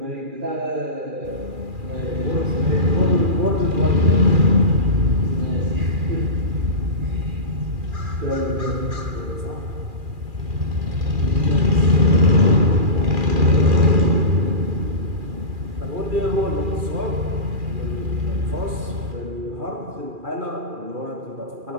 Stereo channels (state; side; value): late; left; 2.4 ms